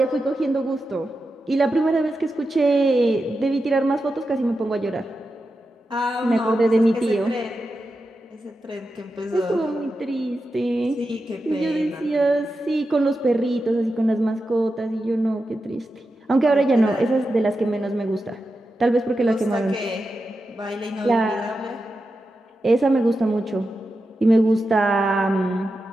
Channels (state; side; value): normal; both; correlation 0.90